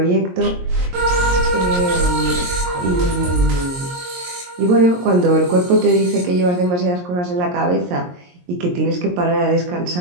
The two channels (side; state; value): left; late; 22 ms